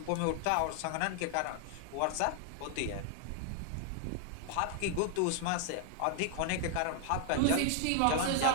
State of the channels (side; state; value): both; different; correlation 0.00